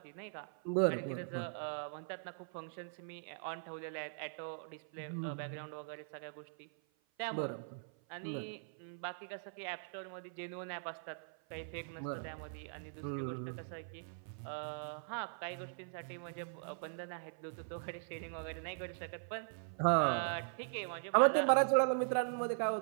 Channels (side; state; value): left; silent; 51 dB below the other